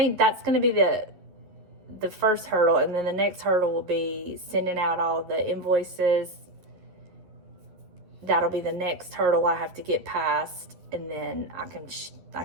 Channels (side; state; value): left; late; 11 ms